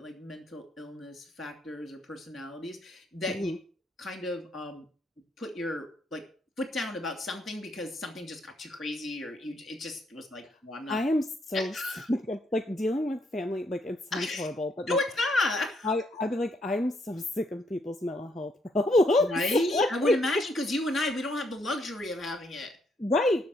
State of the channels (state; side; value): normal; both; correlation 0.73